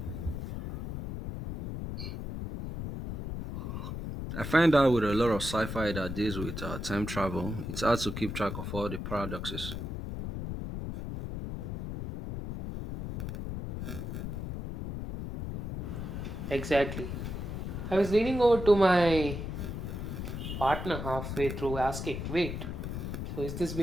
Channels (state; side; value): noise; left; rumble, 5 dB below the sound